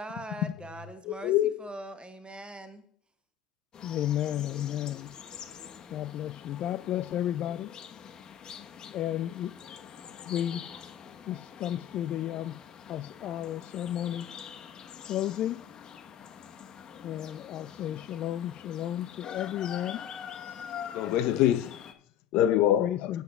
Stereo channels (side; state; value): right; quieter; 11.0 dB